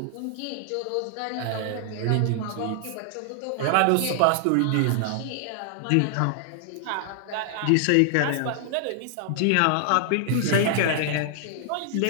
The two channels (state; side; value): different; both; correlation 0.00